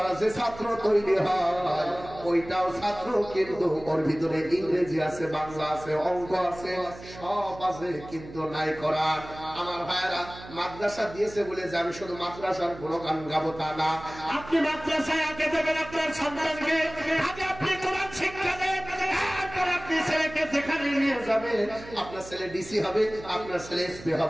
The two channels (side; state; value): right; noise; hum, 16 dB below the sound